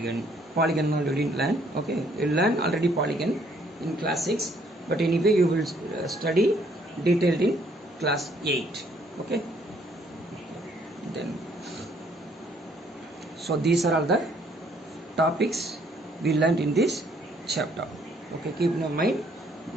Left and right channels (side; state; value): both; normal; correlation 0.65